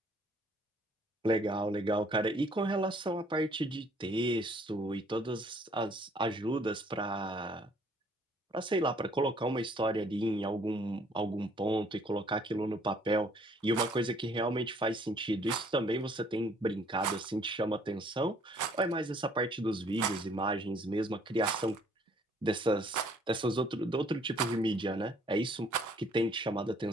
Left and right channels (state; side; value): normal; both; correlation 0.61